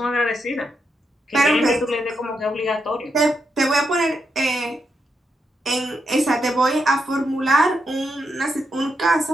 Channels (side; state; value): both; normal; correlation 0.83